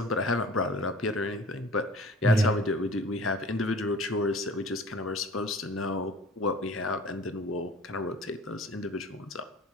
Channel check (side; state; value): both; normal; correlation 0.45